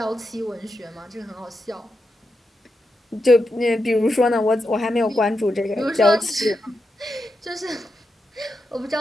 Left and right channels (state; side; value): normal; both; correlation 0.87